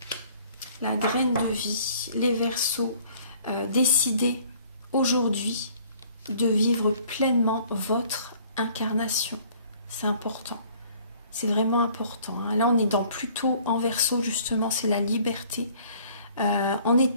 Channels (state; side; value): inverted; both; correlation -0.56